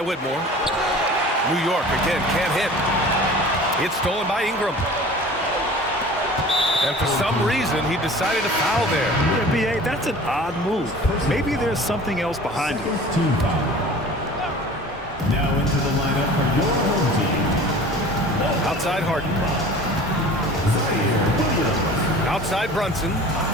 Whitmore. New York again can't hit. It's stolen by Ingram. And for some reason, he decided to foul there. Yeah, B.A., that's an odd move. Maybe there's something else behind it. Team foul. Now into the lineup for your home team. Outside Harden. Outside Brunson.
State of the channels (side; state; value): both; normal; correlation 0.42